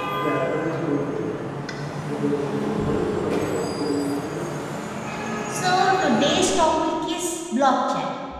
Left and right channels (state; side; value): identical; both; correlation 1.00